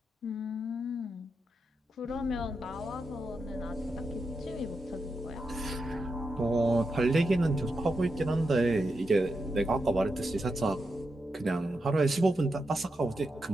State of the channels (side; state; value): both; normal; correlation 0.86